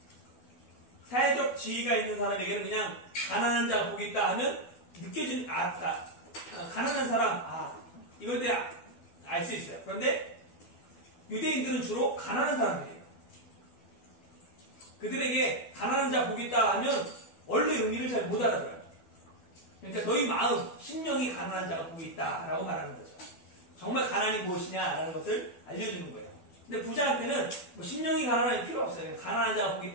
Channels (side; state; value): right; late; 12 ms